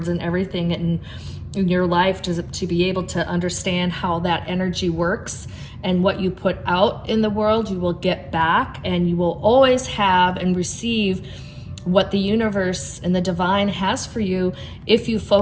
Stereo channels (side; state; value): both; identical; correlation 1.00